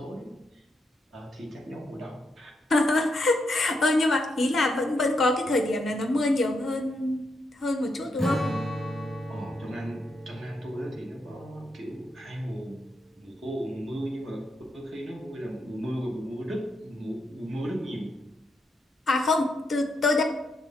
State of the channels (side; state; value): both; normal; correlation 0.81